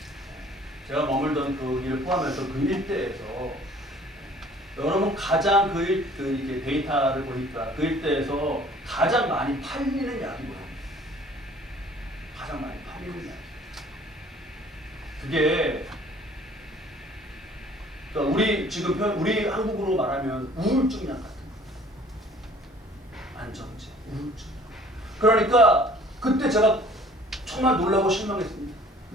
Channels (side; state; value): both; normal; correlation 0.53